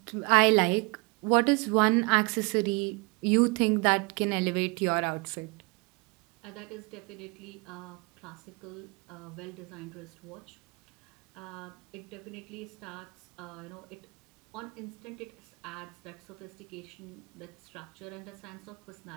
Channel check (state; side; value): quieter; left; 29.5 dB